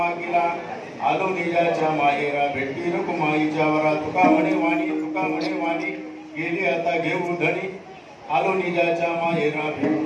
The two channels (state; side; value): identical; both; correlation 1.00